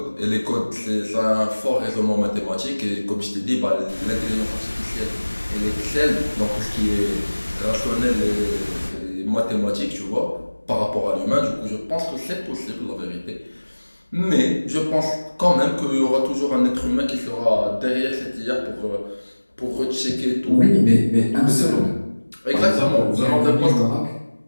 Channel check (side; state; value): both; inverted; correlation -1.00